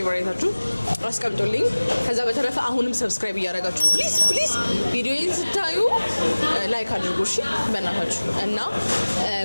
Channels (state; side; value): inverted; both; correlation -1.00